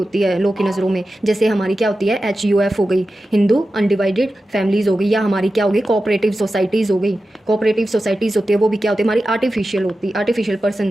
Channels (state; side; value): normal; both; correlation 0.93